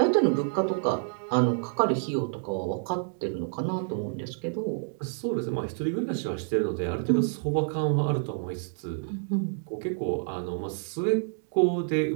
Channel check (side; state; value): left; silent; digital silence